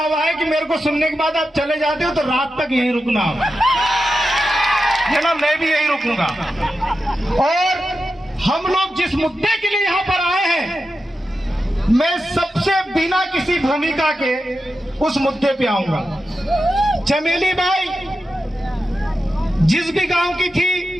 है कि मेरे को सुनने के बाद आप चले जाते हो तो रात तक यहीं रुकना है ना, मैं भी यहीं रुकूंगा। और हम लोग जिस मुद्दे के लिए यहाँ पर आए हैं, मैं सबसे बिना किसी भूमिका के उस मुद्दे पे आऊंगा। चमेली बाई जिस भी गांव की थी,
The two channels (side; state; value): both; normal; correlation 0.90